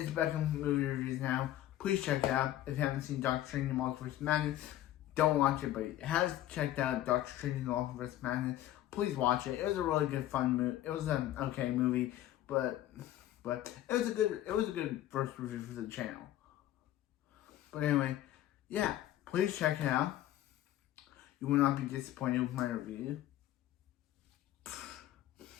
Beckham's movie reviews now. Please check it out. If you haven't seen Doctor Strange and Multiverse of Madness, don't watch it. But if you have checked out Doctor Strange and Multiverse of Madness, please watch it. It was a really good, fun movie. It was an okay movie, but it was a good first review for the channel. But anyway, please check it out. You will not be disappointed with my review.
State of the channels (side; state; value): right; quieter; 13.5 dB